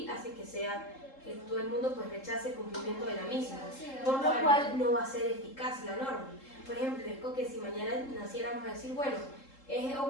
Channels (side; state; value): right; late; 3.7 ms